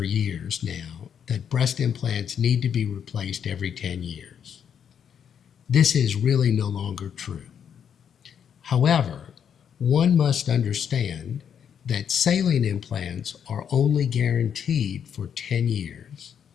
years now that breast implants need to be replaced every 10 years. This is really no longer true. However, one must understand that saline implants are only guaranteed for 10 years,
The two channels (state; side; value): quieter; right; 8.1 dB